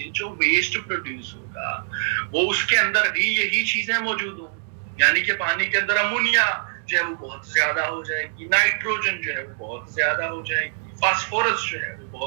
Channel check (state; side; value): silent; left; digital silence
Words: जो वेस्ट प्रोड्यूस होगा वो उसके अंदर भी यही चीजें मौजूद होंगी. यानी कि पानी के अंदर अमोनिया जो है वो बहुत ज्यादा हो जाएगी, नाइट्रोजन जो है वो बहुत ज्यादा हो जाएगी, फास्फोरस जो है वो